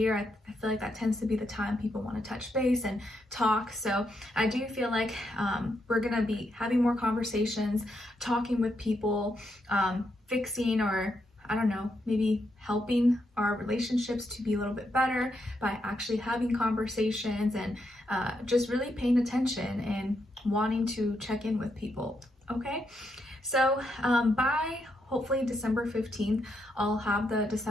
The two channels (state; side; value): normal; both; correlation 0.80